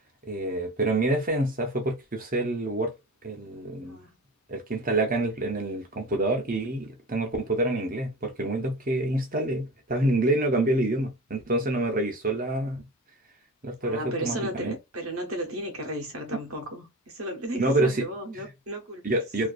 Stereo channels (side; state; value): both; normal; correlation 0.33